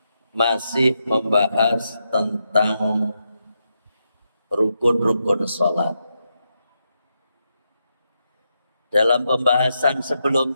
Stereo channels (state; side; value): inverted; both; correlation -0.84